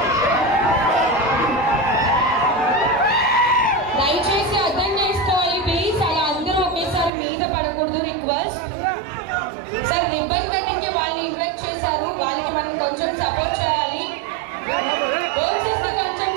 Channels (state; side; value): drops out; left; at 7.1 s